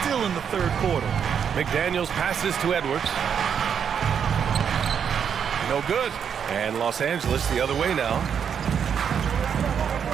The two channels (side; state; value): left; quieter; 7.6 dB